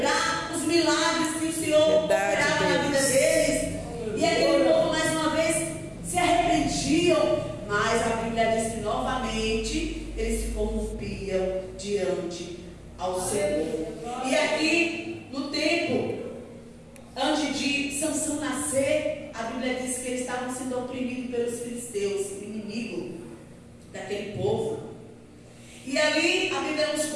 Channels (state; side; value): identical; both; correlation 1.00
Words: os milagres que o Senhor operava na vida deles. E aquele povo mais uma vez se arrependiam, mas a Bíblia diz que novamente eles se corrompiam diante ao Senhor. E aqui no tempo antes de Sansão nascer, a Bíblia diz que eles estavam sendo oprimidos pelos filisteus, o inimigo daquele povo. E ali a Bíblia nos